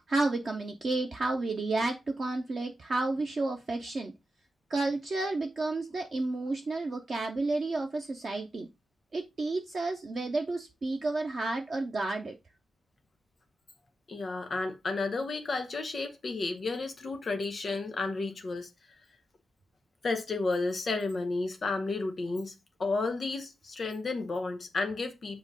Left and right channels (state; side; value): normal; both; correlation 0.88